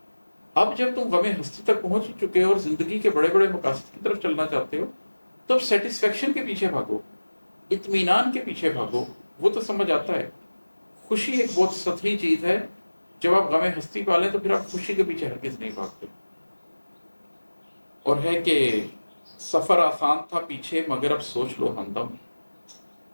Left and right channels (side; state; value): both; inverted; correlation -1.00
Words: اب جب تم غم ہستی تک پہنچ چکے ہو اور زندگی کے بڑے بڑے مقاصد کی طرف چلنا چاہتے ہو، تو اب سیٹسفیکشن کے پیچھے بھاگو، اطمینان کے پیچھے بھاگو۔ وہ تو سمجھ آتا ہے خوشی ایک بہت سطحی چیز ہے، جب آپ غم ہستی پالیں تو پھر آپ خوشی کے پیچھے ہرگز نہیں بھاگتے۔ اور ہے کہ سفر آسان تھا پیچھے مگر اب سوچ لو ہمدم،